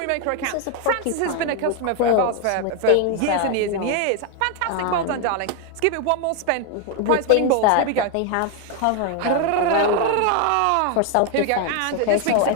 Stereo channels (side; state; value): both; different; correlation 0.01